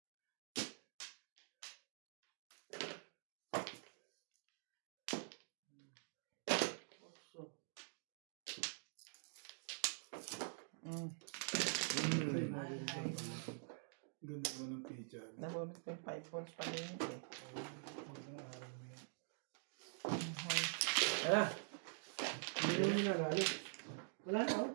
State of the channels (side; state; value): left; silent; digital silence